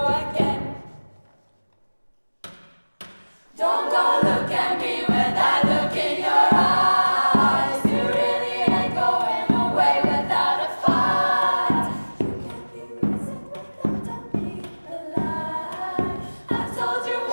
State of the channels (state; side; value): inverted; both; correlation -1.00